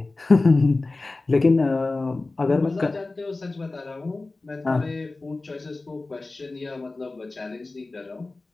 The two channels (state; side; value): quieter; right; 3.3 dB